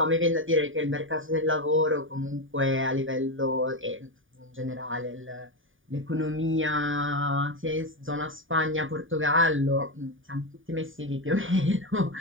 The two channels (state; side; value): late; left; 0.57 ms